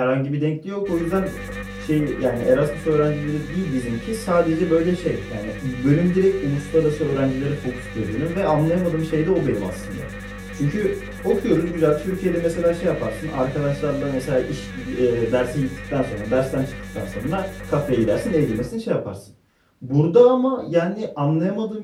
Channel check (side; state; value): both; identical; correlation 1.00